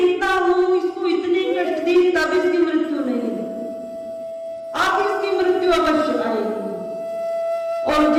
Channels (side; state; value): both; identical; correlation 1.00